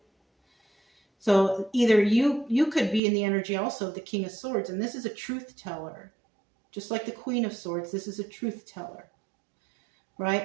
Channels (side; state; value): left; drops out; at 3.0 s